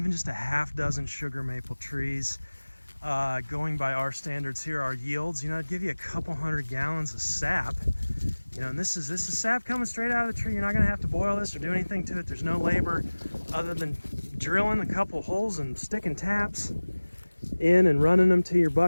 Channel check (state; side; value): inverted; both; correlation -1.00